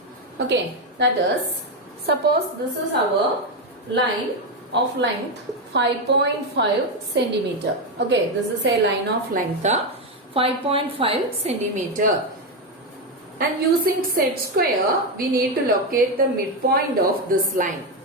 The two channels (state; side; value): normal; both; correlation 0.09